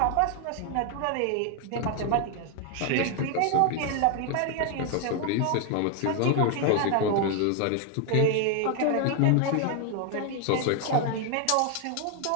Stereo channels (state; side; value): different; both; correlation 0.01